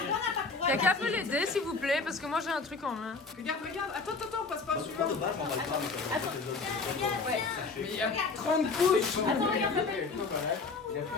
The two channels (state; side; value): quieter; right; 4.2 dB